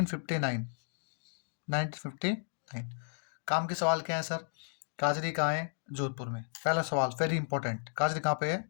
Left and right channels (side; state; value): right; silent; digital silence